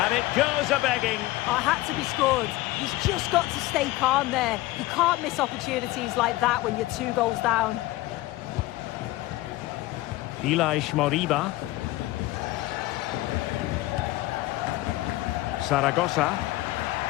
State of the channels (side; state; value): right; quieter; 18.0 dB